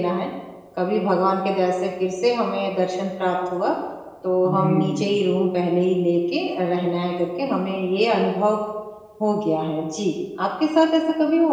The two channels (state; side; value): identical; both; correlation 1.00